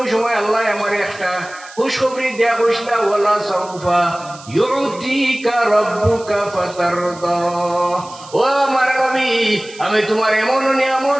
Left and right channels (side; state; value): right; noise; hiss, 19 dB below the sound